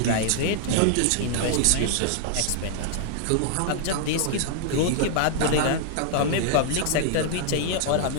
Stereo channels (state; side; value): different; both; correlation -0.01